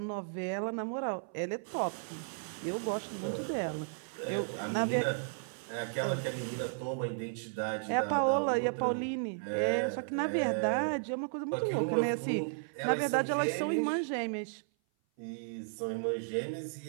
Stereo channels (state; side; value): silent; left; 55 dB below the other